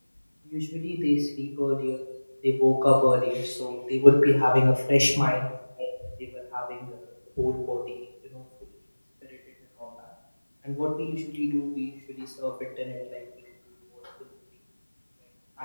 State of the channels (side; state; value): both; inverted; correlation -1.00